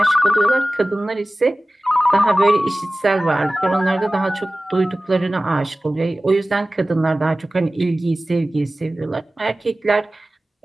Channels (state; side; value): normal; both; correlation 0.97